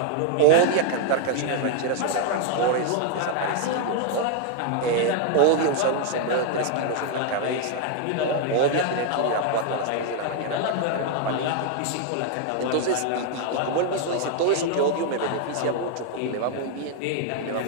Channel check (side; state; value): both; different; correlation 0.00